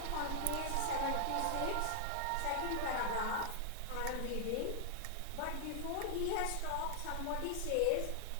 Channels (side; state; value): both; different; correlation 0.00